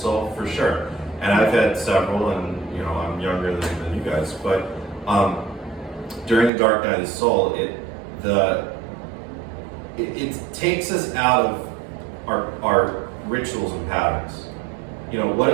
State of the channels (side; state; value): left; drops out; at 6.5 s